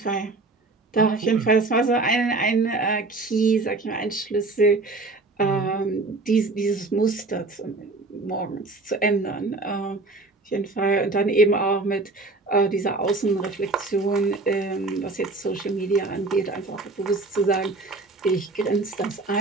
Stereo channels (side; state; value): left; quieter; 3.4 dB